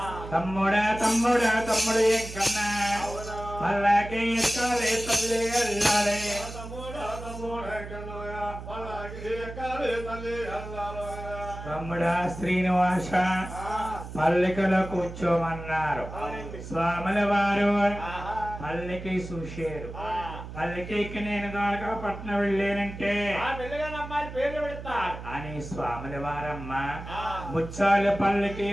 తమ్ముడా తమ్ముడా తమ్ముడు ఎక్కన్నా పల్లకి ఎక్కాలి తల్లి వెళ్ళాలి. తమ్ముడా శ్రీనివాస పల్లకిలో కూర్చోమన్నారు. స్వాముల వారు పల్లకి చూశారు. పల్లెకి నేను గాలక పట్నం వెళ్ళానంటే అని స్వాముల వారమ్మ ముచ్చాల పల్లకి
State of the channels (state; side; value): noise; right; hum, 11 dB below the sound